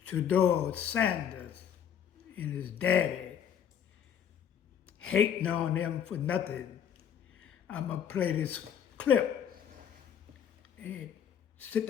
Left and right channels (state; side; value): quieter; right; 8.7 dB